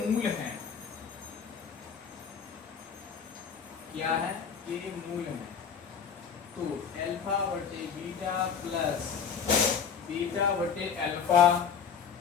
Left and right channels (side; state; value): right; quieter; 6.8 dB